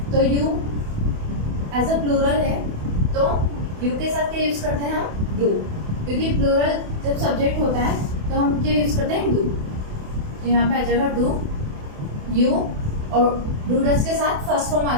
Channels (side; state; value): left; late; 28 ms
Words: तो यू एज अ प्लूरल है, तो यू के साथ क्या यूज करते हैं हम? डू, क्योंकि प्लूरल जब सब्जेक्ट होता है तो हम क्या यूज करते हैं? डू। तो यहाँ पे आ जाएगा डू, यू, और डू डज के साथ फर्स्ट फॉर्म